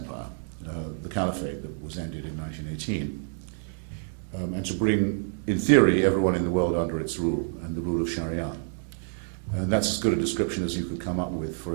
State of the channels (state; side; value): silent; left; digital silence